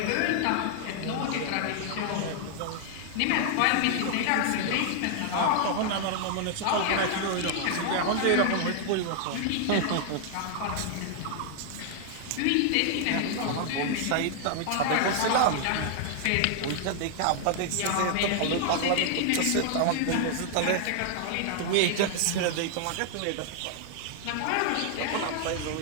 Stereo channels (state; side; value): different; both; correlation 0.00